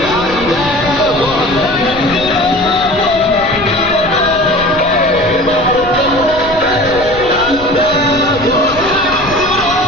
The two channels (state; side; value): noise; left; rumble, 15 dB below the sound